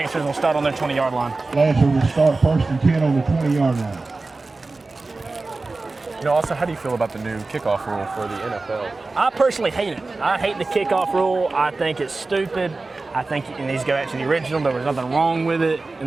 will start on their 20-yard line. Lancers will start 1st and 10 on the 20-yard line. You know, also, how do you feel about the new kickoff rule for the NFL? I personally hate it. I hate the kickoff rule. I think it's stupid. I think it needs to go back to the original. There was nothing wrong with it in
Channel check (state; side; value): quieter; left; 3.5 dB